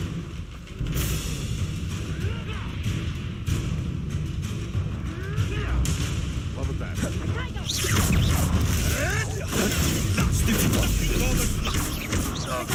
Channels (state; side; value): identical; both; correlation 1.00